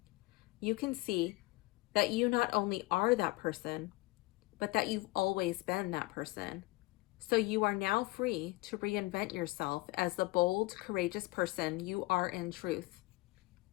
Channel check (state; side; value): quieter; right; 21.6 dB